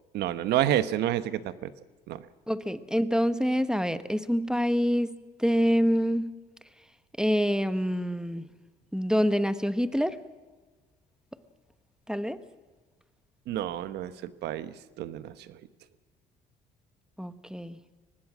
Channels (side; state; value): both; normal; correlation 0.82